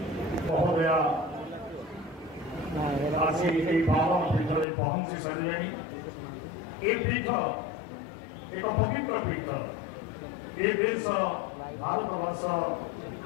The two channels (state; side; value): drops out; right; at 4.7 s